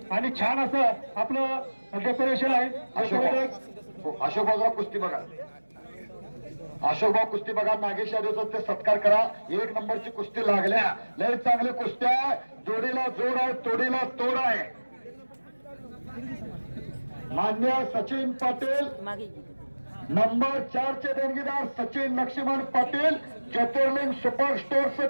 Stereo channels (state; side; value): inverted; both; correlation -1.00